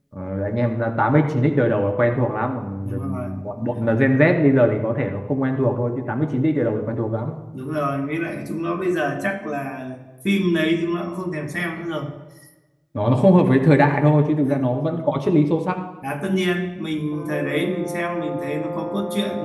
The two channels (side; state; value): both; identical; correlation 1.00